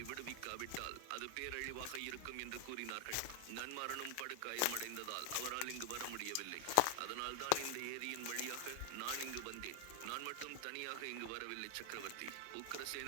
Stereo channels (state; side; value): different; both; correlation 0.00